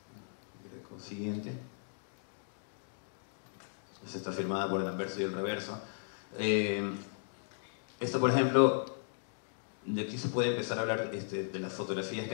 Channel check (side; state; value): right; silent; digital silence